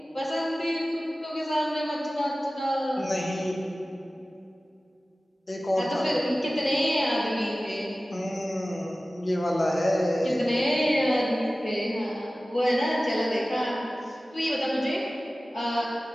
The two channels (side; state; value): both; normal; correlation 0.96